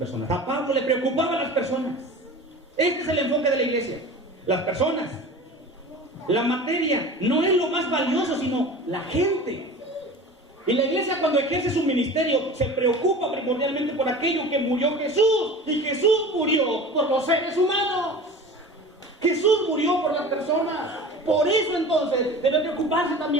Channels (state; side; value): normal; both; correlation 0.37